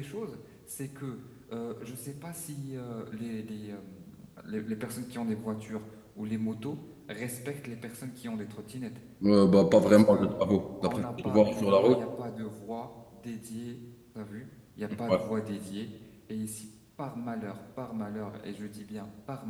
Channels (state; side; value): identical; both; correlation 1.00